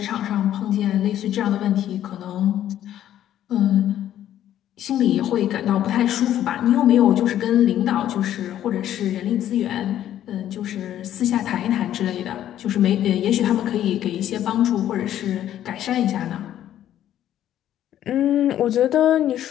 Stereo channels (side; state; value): right; quieter; 11.6 dB